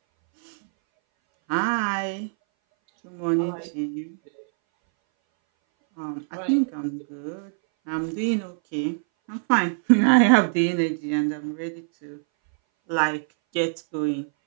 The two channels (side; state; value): left; silent; 60 dB below the other